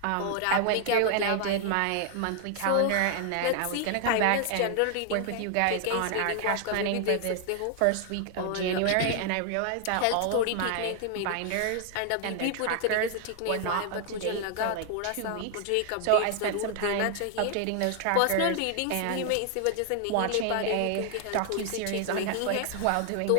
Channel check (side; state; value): both; different; correlation 0.00